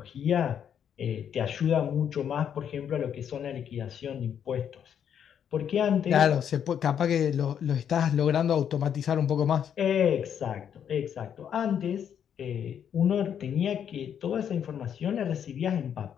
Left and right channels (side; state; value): right; quieter; 8.6 dB